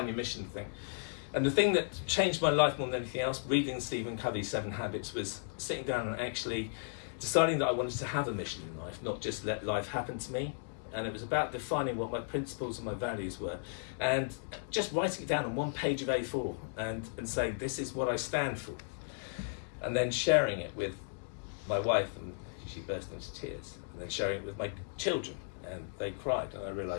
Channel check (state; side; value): silent; right; digital silence